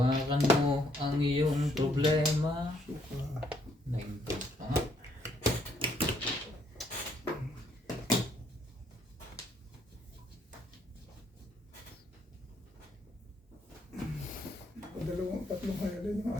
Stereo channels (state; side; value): normal; both; correlation 0.69